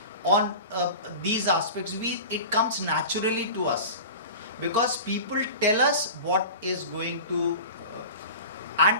on these aspects. It comes naturally to us because people tell us what is going to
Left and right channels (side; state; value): both; inverted; correlation -0.34